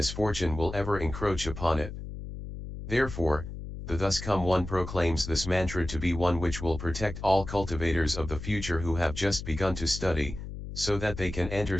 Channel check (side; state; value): left; noise; hum, 9 dB below the sound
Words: will ever encroach upon it. Therefore, the Thus Come One proclaims this mantra to be one which will protect all cultivators of the future who have just begun to study, so that they can enter